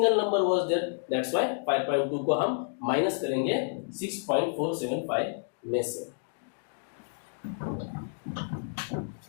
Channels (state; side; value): silent; right; digital silence